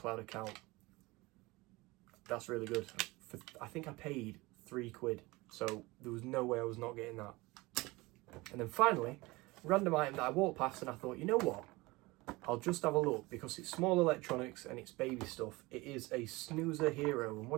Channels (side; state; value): left; quieter; 22.4 dB